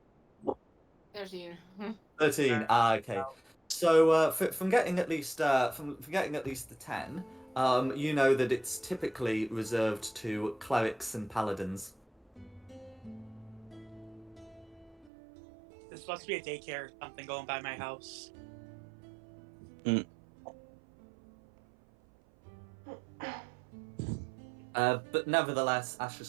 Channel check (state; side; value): drops out; left; at 15.1 s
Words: 13. 13. Okay. So from getting at least from getting at least the 10, you know that it's typically reserved to clerics and paladins. This must be a daycare or something going by my house. But nevertheless,